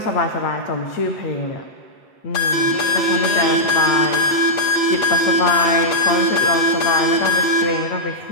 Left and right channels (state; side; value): late; right; 8.6 ms